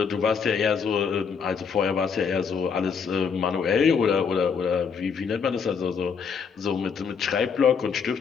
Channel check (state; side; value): quieter; right; 6.1 dB